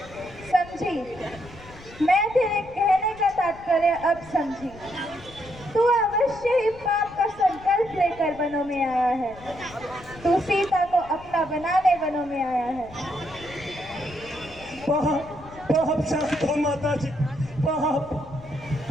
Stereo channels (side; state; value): left; noise; rumble, 19 dB below the sound